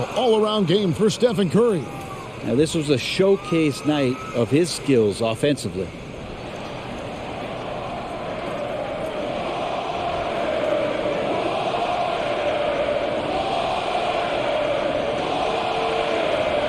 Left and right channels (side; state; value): both; identical; correlation 1.00